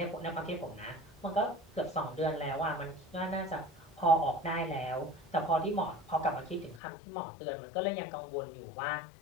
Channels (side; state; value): right; drops out; at 6.8 s